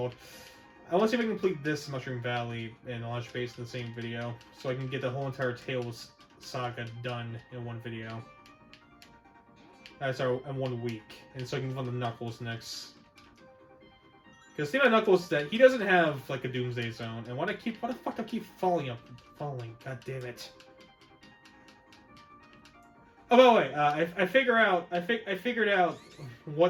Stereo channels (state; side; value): identical; both; correlation 1.00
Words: I want to see if I can complete this Mushroom Valley and launch base in the same video, so I can get the whole entire Tails saga done in one video. Sorry, in 1 week, and so I can go on the Knuckles next. Because the thing about Knuckles is that he doesn't have, like, a Doomsday Zone, and why the fuck do I keep falling? God damn it. Oh, by the way, I figured out